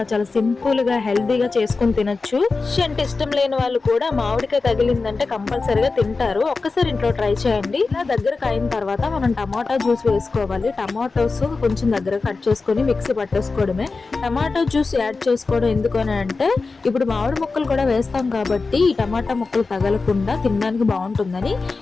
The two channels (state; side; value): quieter; right; 4.1 dB